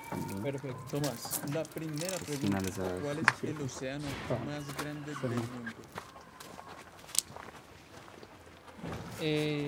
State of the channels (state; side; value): identical; both; correlation 1.00